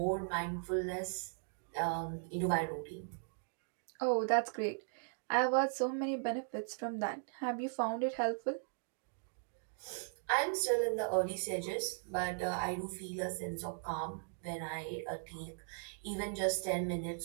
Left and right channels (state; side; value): silent; left; digital silence